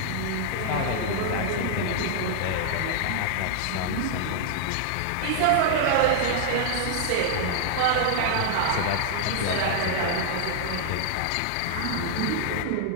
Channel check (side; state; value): both; different; correlation -0.01